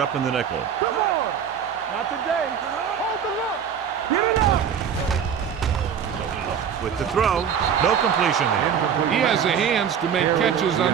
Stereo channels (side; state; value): left; quieter; 7.8 dB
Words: in the nickel. Come on. Not today. Hold the look. Get it up. With the throw, no completion there. He has the hands to make catches on